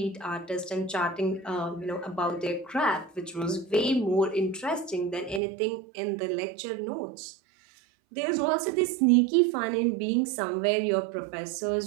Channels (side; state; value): left; drops out; at 5.4 s